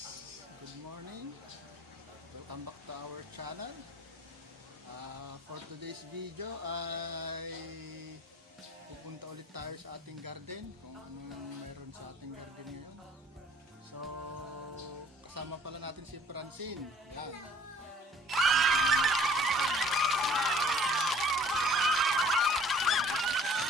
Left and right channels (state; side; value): normal; both; correlation 0.54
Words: Good morning. Welcome back to our channel. For today's video ay pupunta ulit tayo sa ating garden, kung anong meron sa ating garden ngayon. So, kasama pala natin si Francine. Yan.